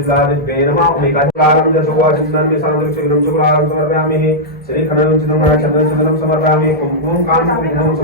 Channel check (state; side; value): normal; both; correlation -0.08